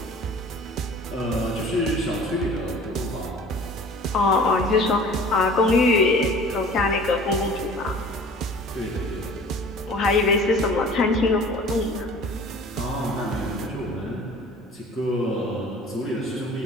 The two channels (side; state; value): both; normal; correlation 0.45